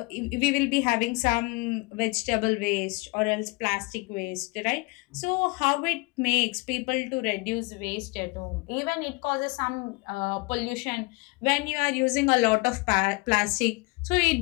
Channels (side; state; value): right; quieter; 26.6 dB